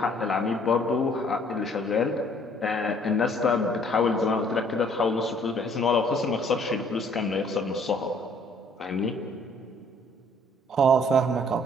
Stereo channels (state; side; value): normal; both; correlation 0.60